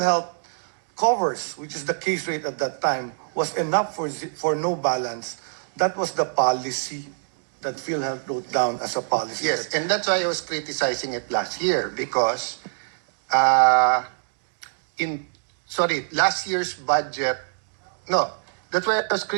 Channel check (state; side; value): silent; left; digital silence